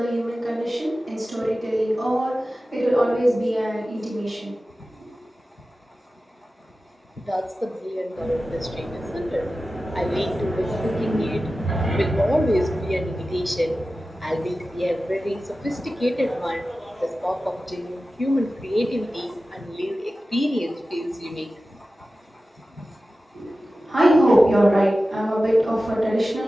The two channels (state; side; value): normal; both; correlation 0.95